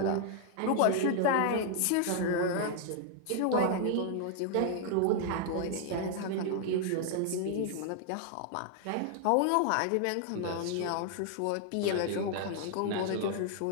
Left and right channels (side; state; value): both; different; correlation 0.00